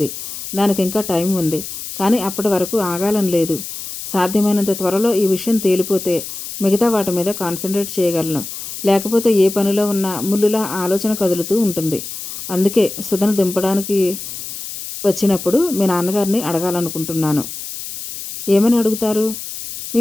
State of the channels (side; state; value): left; noise; hiss, 9 dB below the sound